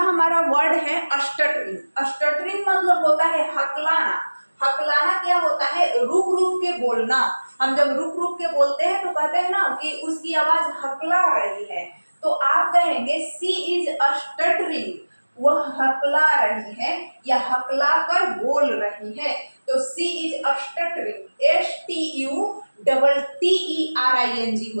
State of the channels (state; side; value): inverted; both; correlation -1.00